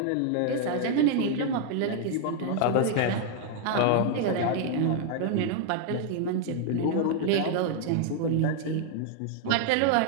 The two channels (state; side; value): different; both; correlation 0.00